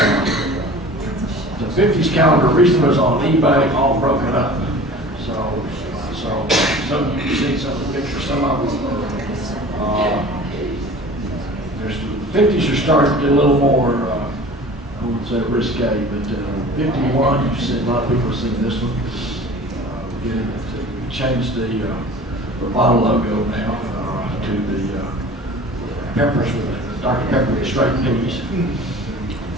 The 50s calendar recently was on eBay, all broken up. So some you can see some of the pictures, some of them. The 50s are starting to get a little more, I wouldn't say risque, but 51, you've seen, a lot of people have seen this one. We changed the bottle logo now to the peppers with Dr. Pepper with straight peas.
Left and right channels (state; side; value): normal; both; correlation 0.42